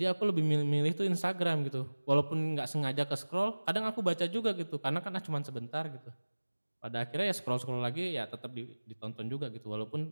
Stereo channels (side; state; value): both; inverted; correlation -1.00